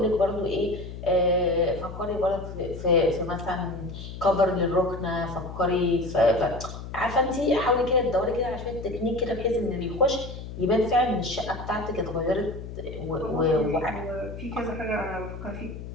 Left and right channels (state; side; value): noise; left; hum, 10 dB below the sound